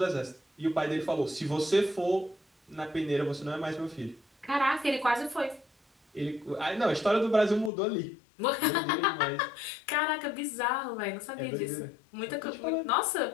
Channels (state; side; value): drops out; right; at 7.7 s